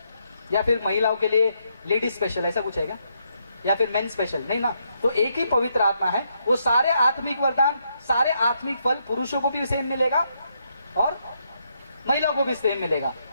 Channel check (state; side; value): inverted; both; correlation -0.77